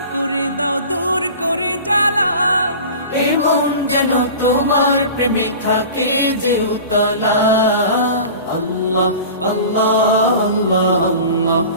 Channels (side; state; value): both; inverted; correlation -0.37